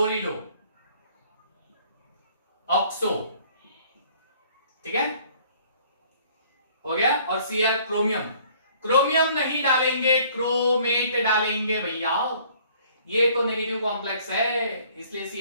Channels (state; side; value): inverted; both; correlation -0.57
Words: ऑक्सो, ठीक है, हो गया। और Cr क्रोमियम, क्रोमियम नहीं डालेंगे, क्रोमेट डालेंगे भैया, ये तो नेगेटिव कॉम्प्लेक्स है, इसलिए